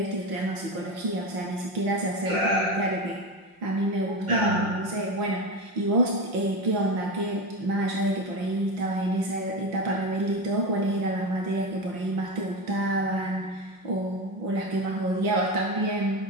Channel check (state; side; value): late; left; 5.6 ms